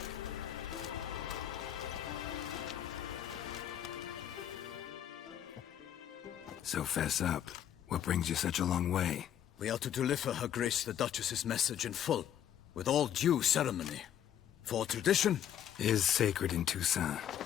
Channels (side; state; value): right; quieter; 10.3 dB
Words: So fess up. What brings you such a long way? We are to deliver Her Grace the Duchess's message in full, with all due ceremony. For tradition is sacred in Toussaint.